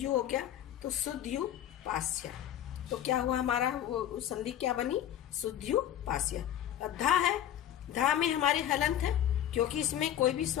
हो गया तो सुध्यु पास्य। तो क्या हुआ हमारा वो संधि क्या बनी? सुध्यु पास्य। अब धा है, धा में हमारे हलंत है क्योंकि इसमें कोई भी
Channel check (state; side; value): quieter; right; 11.3 dB